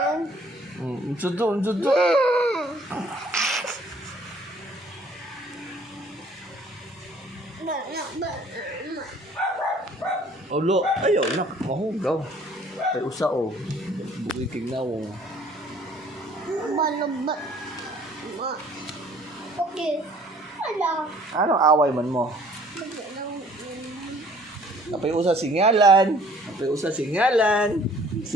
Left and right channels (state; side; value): normal; both; correlation 0.57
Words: Unsudo. Olo, ayaw na. Mahugaw. Ay usa o. Buhay kignawong. Balabot. Okay. Ala. Anong away man mo? Napay usa singalan.